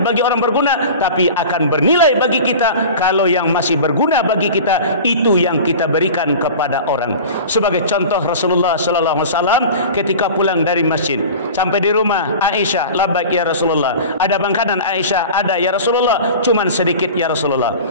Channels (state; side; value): inverted; both; correlation -0.36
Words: bagi orang berguna, tapi akan bernilai bagi kita kalau yang masih berguna bagi kita itu yang kita berikan kepada orang. Sebagai contoh, Rasulullah sallallahu alaihi wasallam ketika pulang dari masjid sampai di rumah Aisyah, labbaik ya Rasulullah. Ada makanan? Aisyah, ada ya Rasulullah, cuman sedikit ya Rasulullah.